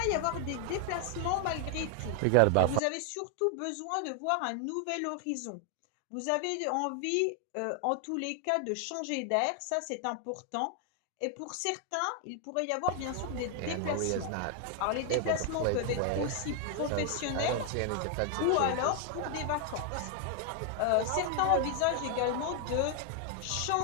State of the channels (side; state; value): both; different; correlation 0.00